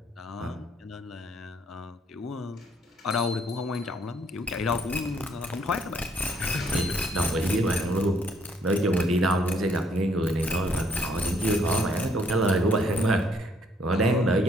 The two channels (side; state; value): both; normal; correlation 0.67